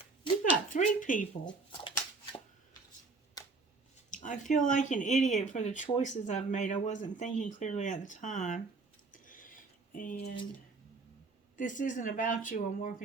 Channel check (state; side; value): quieter; left; 4.0 dB